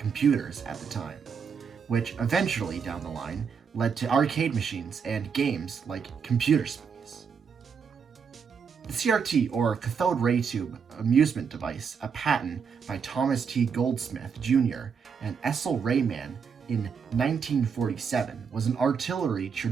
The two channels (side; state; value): left; quieter; 6.3 dB